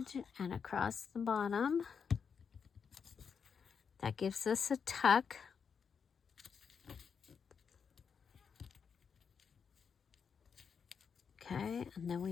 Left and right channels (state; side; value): quieter; right; 6.4 dB